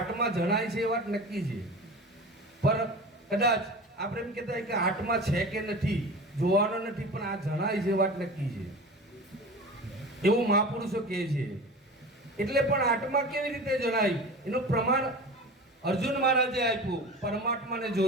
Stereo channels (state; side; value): normal; both; correlation 0.34